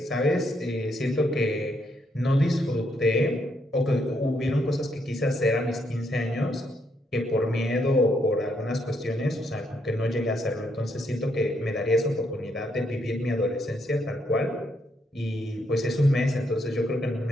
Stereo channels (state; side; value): normal; both; correlation 0.76